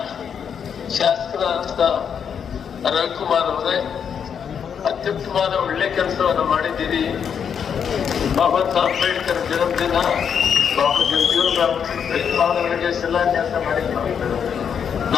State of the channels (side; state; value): right; quieter; 7.5 dB